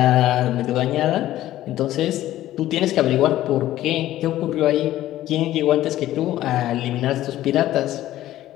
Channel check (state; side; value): quieter; right; 14.1 dB